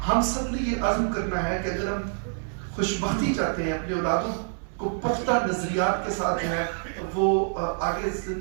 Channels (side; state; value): left; silent; 60 dB below the other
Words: ہم سب نے یہ عزم کرنا ہے کہ اگر ہم خوشبختی چاہتے ہیں اپنے اولادوں کو پختہ نظریات کے ساتھ جو ہے وہ آگے